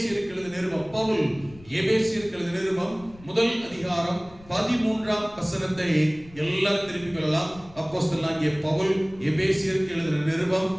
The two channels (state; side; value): noise; left; rumble, 22 dB below the sound